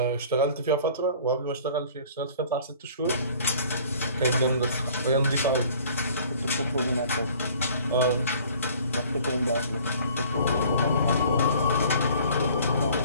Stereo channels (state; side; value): inverted; both; correlation -0.51